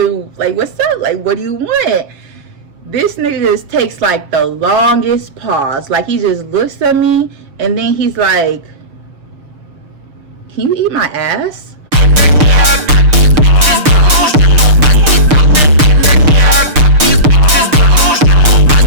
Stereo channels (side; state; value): left; late; 6.6 ms